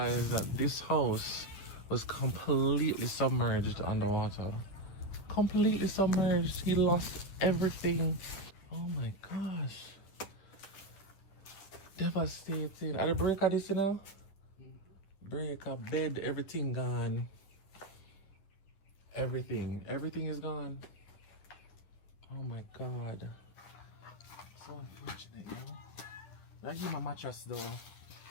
that this house was completely submerged underwater. Completely submerged. He lost everything. Oh my gosh. Devastating. Are the breaker this, you know? Breaker, bed, everything gone. Everything is gone. Oh my god. So unfortunate, yo. I give my mattress though.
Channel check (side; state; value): right; late; 10 ms